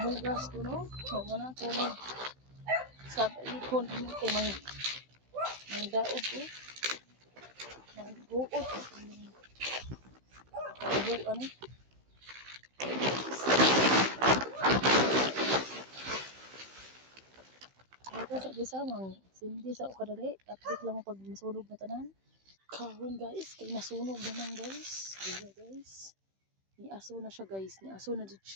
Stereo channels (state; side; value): late; left; 16 ms